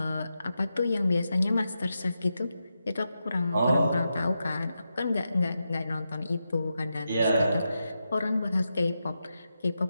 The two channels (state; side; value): inverted; both; correlation -0.87